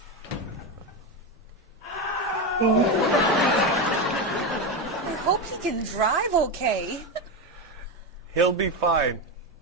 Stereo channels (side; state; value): both; normal; correlation 0.13